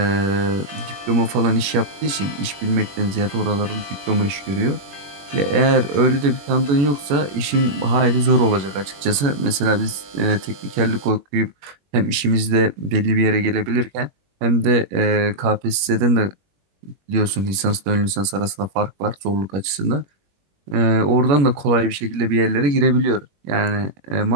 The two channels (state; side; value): late; left; 21 ms